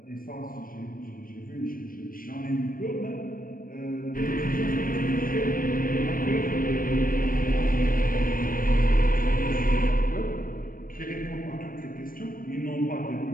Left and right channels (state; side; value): late; right; 0.41 ms